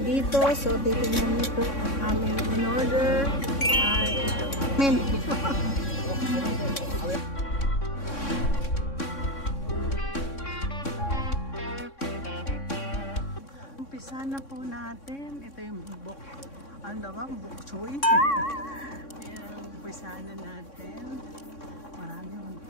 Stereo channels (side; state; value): right; late; 3.6 ms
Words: dito. So, titingnan niyo po ang aming in-order. Umpisa na po natin. Ito yung bok. Ano ba? Bok choy. Ayan, umpisa na natin. Marami yung